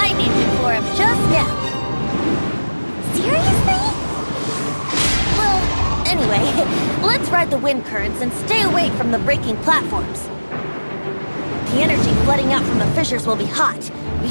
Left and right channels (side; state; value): both; inverted; correlation -1.00